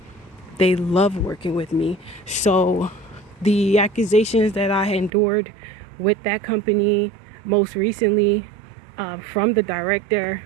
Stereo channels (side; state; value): left; drops out; at 5.1 s